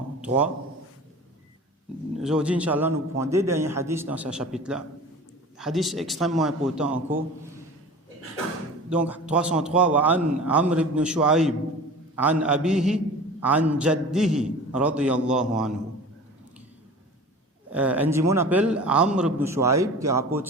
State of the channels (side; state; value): both; normal; correlation 0.38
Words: Aujourd'hui, Inch'Allah, nous prenons deux derniers hadiths dans ce chapitre-là. Hadith extrêmement important encore. Donc, 303, وعن عمرو بن شعيب عن أبيه عن جده رضي الله عنه. Un dimon appelle Amr ibn Shu'aib qui rapporte